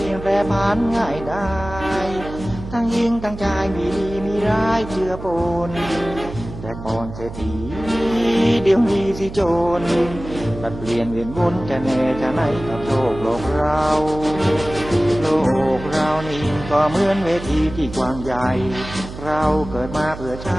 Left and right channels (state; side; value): noise; right; hum, 11 dB below the sound